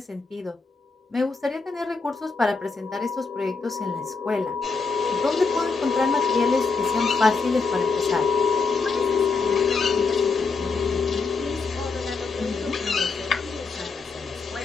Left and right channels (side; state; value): right; quieter; 4.5 dB